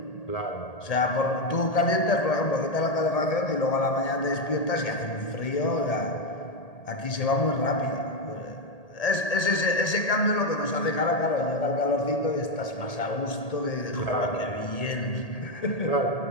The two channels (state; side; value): late; right; 1.8 ms